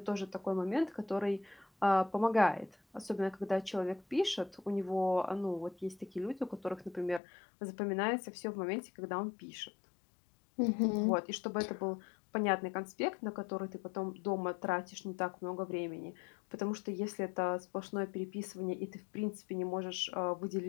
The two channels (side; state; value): right; drops out; at 7.2 s